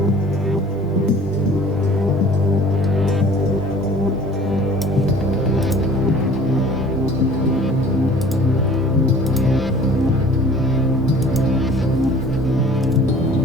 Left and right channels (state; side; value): normal; both; correlation 0.49